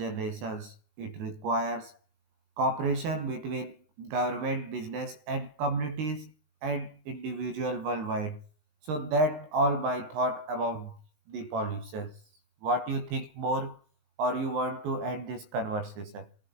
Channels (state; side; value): late; left; 20 ms